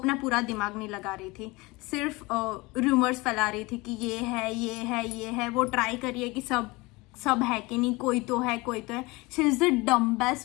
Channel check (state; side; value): quieter; right; 23.4 dB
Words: पूरा दिमाग नहीं लगा रही थी, सिर्फ रूमर्स फैला रही थी कि ये है ये है ये है. वो ट्राई करिए कि सब है कि नहीं, कोई तो है कोई तो है. She is the